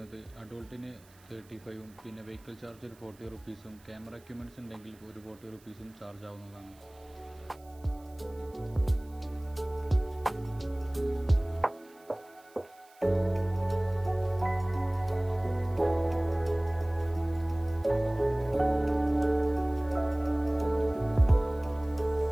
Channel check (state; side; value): noise; right; hiss, 28 dB below the sound